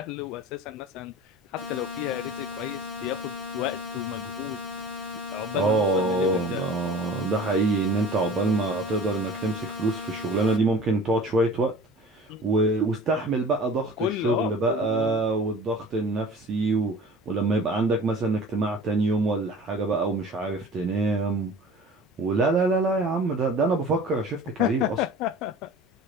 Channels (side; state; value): both; normal; correlation 0.41